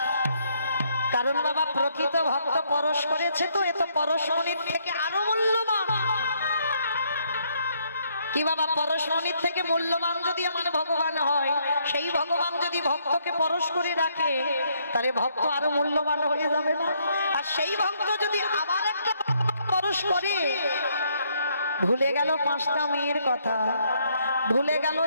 কারণ বাবা প্রকৃত ভক্ত পরশ করেছে, তো এত পরশমণির থেকে আরো মূল্যবান কি বাবা? পরশমণির থেকে মূল্যবান যদি আমার ভগবান হয়, সেই ভগবান যদি ভক্তকে পরশ করে রাখে, তাহলে ভক্ত আরো মূল্যবান হয়ে যাবে না? আর সেই ভক্ত যদি আবার একটা পরশ করে, ভুলে গেল 5টা মেয়ের কথা, ভুলে গেল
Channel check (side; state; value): both; inverted; correlation -0.71